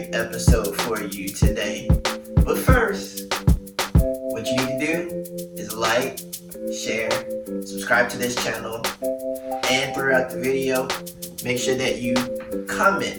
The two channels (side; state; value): both; identical; correlation 1.00